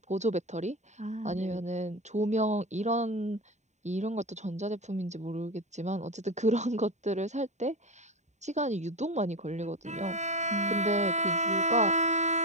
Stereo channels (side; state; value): left; late; 0.34 ms